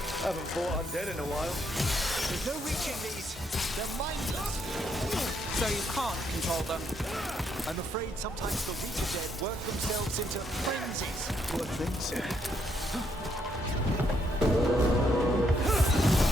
Haven't fought undead in a while. There's no reaching these. They're mindless. So you can't control them. I'm afraid sometimes the weaker dead work themselves into frenzies. Poor things.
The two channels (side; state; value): both; normal; correlation 0.74